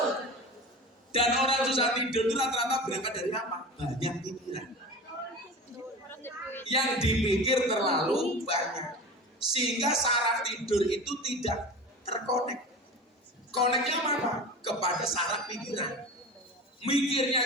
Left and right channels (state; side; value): normal; both; correlation 0.33